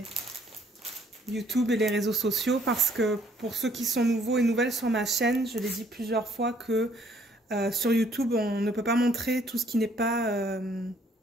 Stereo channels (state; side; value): normal; both; correlation 0.64